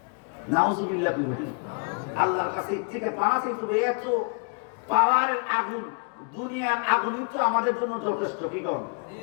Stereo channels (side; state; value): right; quieter; 38.6 dB